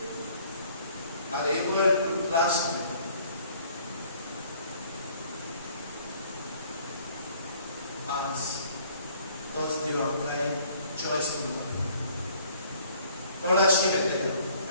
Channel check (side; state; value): both; inverted; correlation -0.58